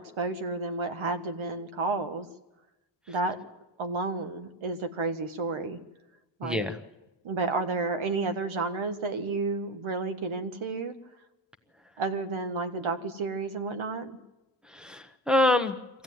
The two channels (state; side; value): normal; both; correlation 0.19